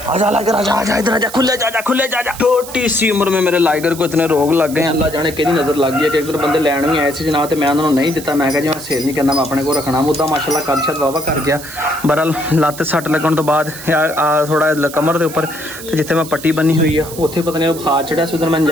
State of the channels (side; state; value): right; noise; hiss, 13 dB below the sound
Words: आजा लाइगर आजा आजा इधर आजा, खुले जा खुले जा। छोटी सी उम्र में मेरे लाइगर को इतने रोग लग गए, अल्लाह जाने कि नज़र लग गई है कि एक बंदे लैन भी आए थे जनाब, तो मैं उन्होंने नहीं दिता। मैं जी मैं सेल नहीं करना, मैं अपने को रखना। मुद्दा माशाल्लाह कद शद वावा कर गया। बहरहाल लत्त सट लगन तो बाद थोड़ा कमर के उपर जिथे मैं पट्टी बनी हुई है उत्थे पता नहीं बुखार चढ़िया सी, उधर मैं